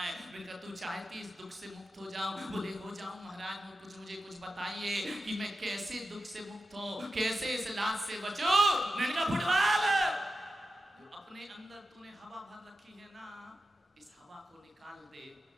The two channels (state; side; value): normal; both; correlation 0.91